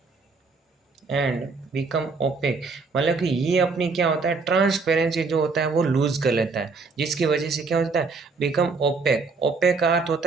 मतलब कि ये अपनी क्या होता है, ट्रांसपेरेंसी जो होता है वो लूज कर लेता है, जिसकी वजह से क्या होता है, बिकम ओपेक। ओपेक का अर्थ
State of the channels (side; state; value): left; quieter; 4.3 dB